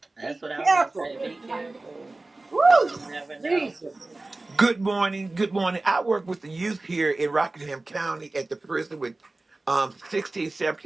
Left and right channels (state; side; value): quieter; left; 3.1 dB